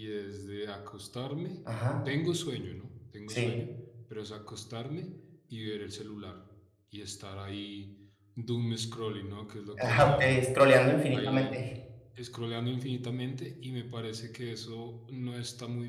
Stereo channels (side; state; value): both; identical; correlation 1.00